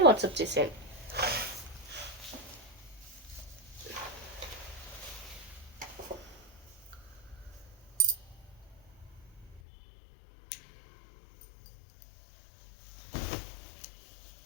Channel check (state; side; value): drops out; right; at 9.6 s